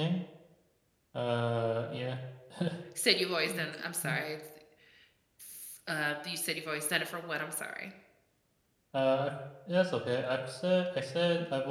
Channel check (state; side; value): identical; both; correlation 1.00